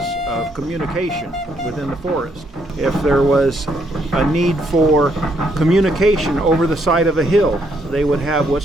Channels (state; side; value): normal; both; correlation 0.72